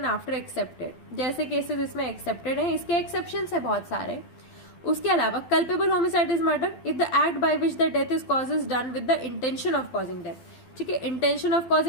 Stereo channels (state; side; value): late; right; 12 ms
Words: after excepted, जैसे केसेस इसमें एक्सेप्टेड है, इसके एक्सेप्शंस है बहुत सारे। उसके अलावा culpable homicide is murder if the act by which the death is cause is done with the intention of causing death, ठीक है। इंटेंशन ऑफ